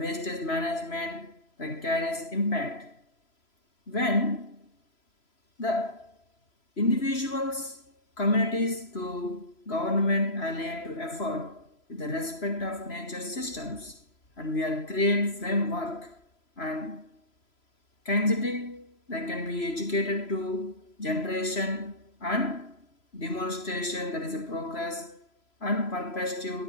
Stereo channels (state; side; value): late; right; 3.0 ms